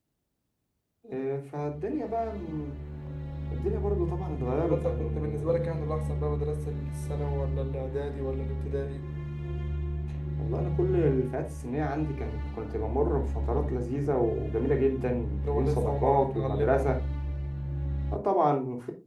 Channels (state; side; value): identical; both; correlation 1.00